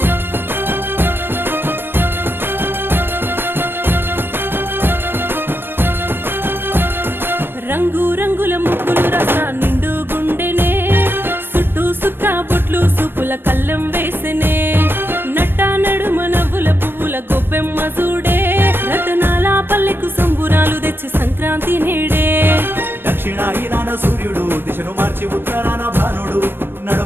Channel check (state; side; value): late; left; 0.099 ms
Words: రంగు రంగుల ముగ్గులు రస నిండు గుండెనే సుట్టు సుక్క బొట్లు సుపుల కళ్ళెం వేసెనే నట్ట నడుమ నవ్వుల పువ్వుల గొప్పెమ్మ చూడే రతనాల పల్లెకు సంబురాలు తెచ్చి సంక్రాంతి నేడే దక్షిణాయనాన సూర్యుడు దిశను మార్చి ఉత్తరాన భానుడు